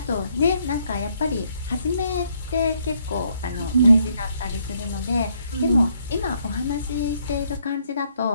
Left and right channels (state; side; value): inverted; both; correlation -0.71